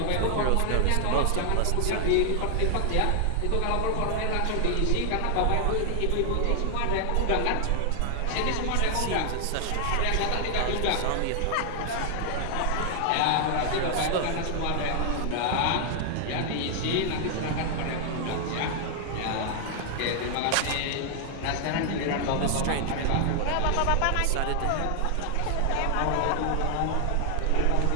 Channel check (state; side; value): different; both; correlation 0.00